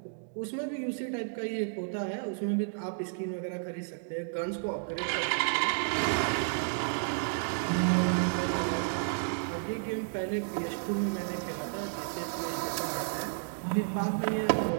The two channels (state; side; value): silent; left; digital silence